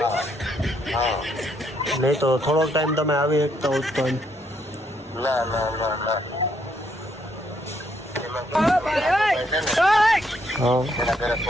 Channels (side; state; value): both; normal; correlation 0.73